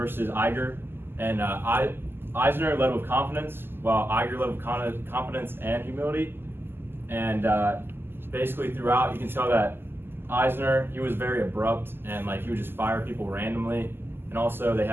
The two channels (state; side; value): late; left; 0.11 ms